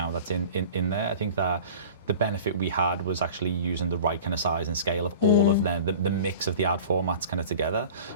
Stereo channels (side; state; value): both; inverted; correlation -0.41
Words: that's in there. I think that the benefit we had was actually using the right kind of size and scale of all of the mix of the ad formats kind of together.